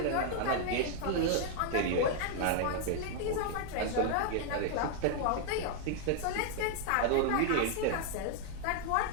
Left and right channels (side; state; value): both; different; correlation 0.00